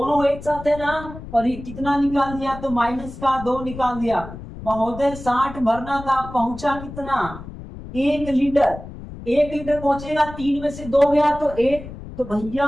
एक साथ है ना, और ये कितना निकाल दिया तो माइनस का 2 निकाल दिया। महोदय 60 भरना था, पहुंचा कितना 1 लीटर। 1 लीटर पहुंचेगा, 3 में से 2 गया तो 1, तो भैया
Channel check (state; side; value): noise; left; rumble, 13 dB below the sound